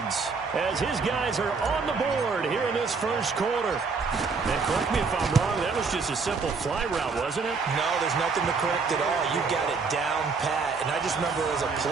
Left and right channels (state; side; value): quieter; left; 4.7 dB